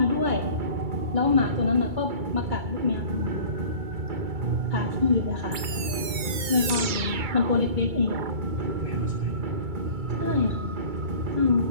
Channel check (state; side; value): late; left; 2.3 ms